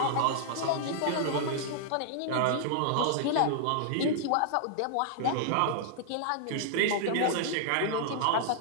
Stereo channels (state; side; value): different; both; correlation -0.01